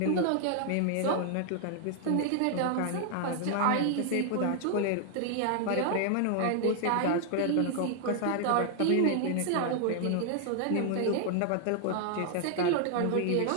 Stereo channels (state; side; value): different; both; correlation 0.00